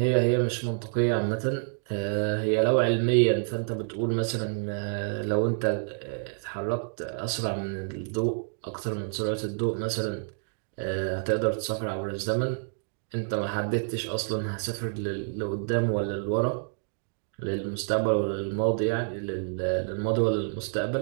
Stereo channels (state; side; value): silent; left; digital silence